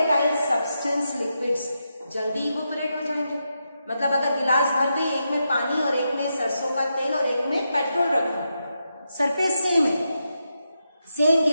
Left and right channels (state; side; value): inverted; both; correlation -0.86